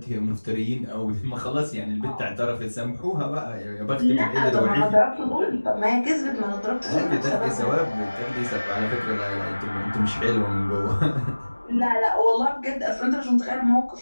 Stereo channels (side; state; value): both; inverted; correlation -1.00